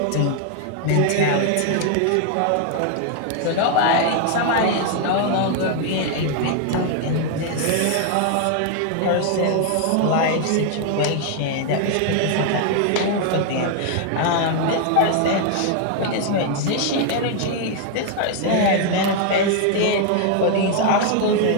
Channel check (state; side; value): different; both; correlation 0.00